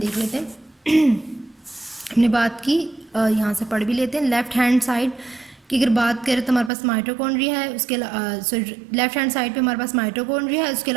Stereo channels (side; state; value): left; drops out; at 6.7 s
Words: लेते हैं हमने बात की, यहाँ से पढ़ भी लेते हैं। लेफ्ट हैंड साइड की अगर बात करें तो हमारे पास माइटोकॉन्ड्रिया है, उसके लेफ्ट हैंड साइड पे हमारे पास माइटोकॉन्ड्रिया है। उसके